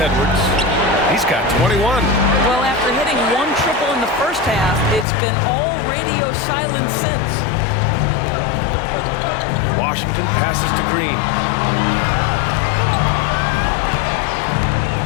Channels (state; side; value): drops out; right; at 5.1 s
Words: He's got 21. Well, after hitting one triple in the first half, it's been all radio silence since. Washington passes to Green.